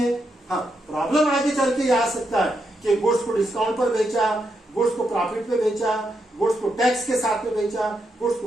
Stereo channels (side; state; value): both; normal; correlation 0.82